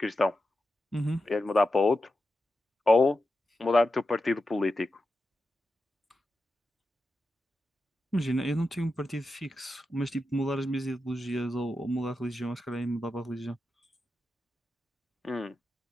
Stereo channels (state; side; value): normal; both; correlation 0.90